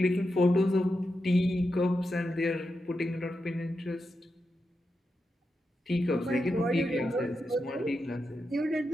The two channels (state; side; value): normal; both; correlation 0.87